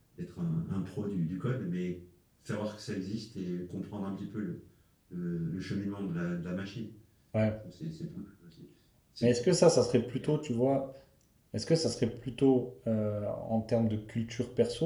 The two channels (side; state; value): both; identical; correlation 1.00